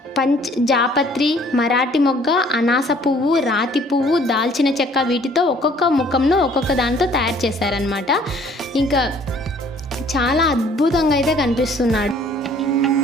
జాపత్రి, మరాఠీ మొగ్గ, అనాస పువ్వు, రాతి పువ్వు, దాల్చిన చెక్క వీటితో ఒక్కొక్క ముఖంను ఒక్కొక్క దాంతో తయారు చేశారనమాట. ఇంకా చాలా అద్భుతంగా అయితే కనిపిస్తున్నాడు.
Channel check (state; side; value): normal; both; correlation 0.57